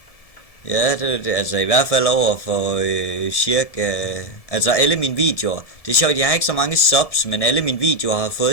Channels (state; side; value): late; right; 1.7 ms